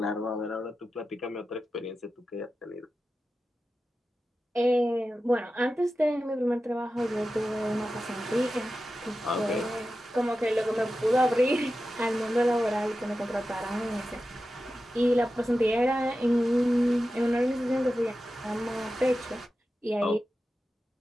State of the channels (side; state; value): both; normal; correlation 0.93